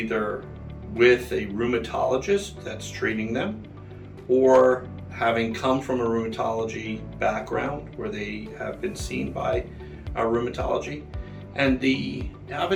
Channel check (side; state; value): both; identical; correlation 1.00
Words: with a rheumatologist that's treating them, or having come from a rheumatology background where they have been seen by rheumatology. And the